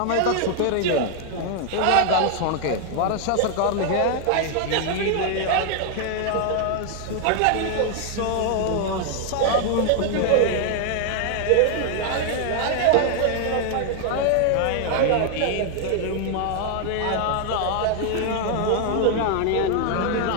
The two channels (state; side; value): different; both; correlation 0.00